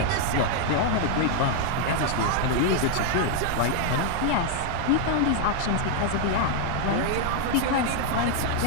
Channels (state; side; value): different; both; correlation 0.00